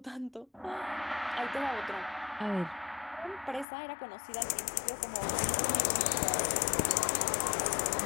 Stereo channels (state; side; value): drops out; right; at 3.7 s